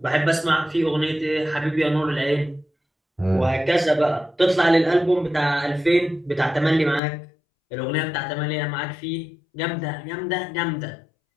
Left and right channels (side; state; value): right; drops out; at 7.0 s